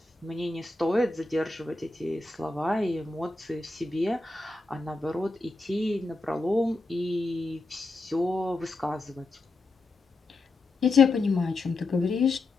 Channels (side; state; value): right; quieter; 3.2 dB